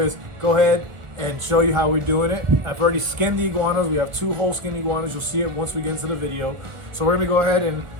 go ahead and show you how we're doing it. I've already skinned the iguanas. We have 2 whole skinned iguanas. You'll see it once we get into the video. So we're gonna go ahead and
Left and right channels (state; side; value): late; left; 1.6 ms